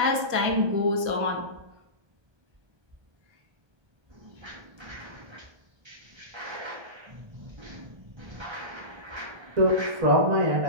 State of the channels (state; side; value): late; left; 1.2 ms